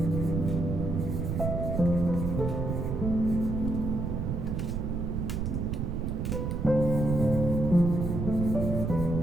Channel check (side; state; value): right; noise; rumble, 1 dB below the sound